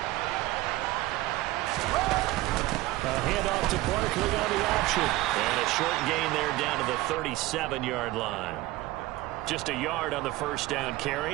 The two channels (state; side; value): quieter; left; 18.1 dB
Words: A handoff to Barkley on the option. And a short gain there down to the 37-yard line. Just a yard on the first down